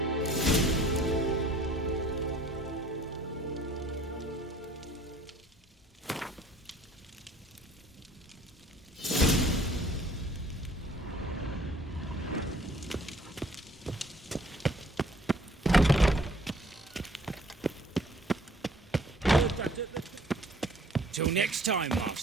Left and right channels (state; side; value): normal; both; correlation 0.55